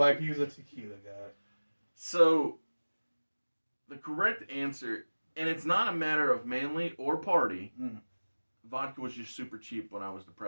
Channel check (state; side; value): inverted; both; correlation -1.00